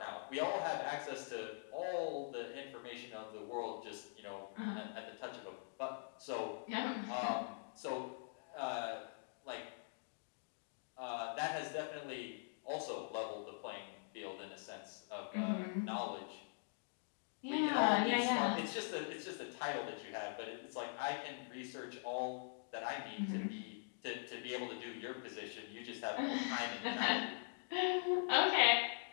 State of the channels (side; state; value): right; silent; digital silence